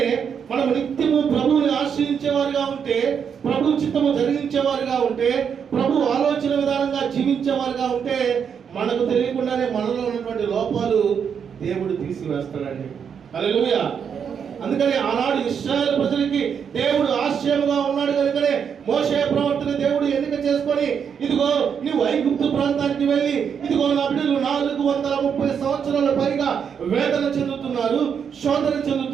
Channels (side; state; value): left; quieter; 7.2 dB